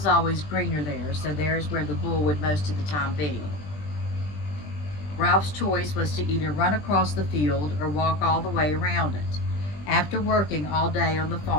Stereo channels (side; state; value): right; late; 20 ms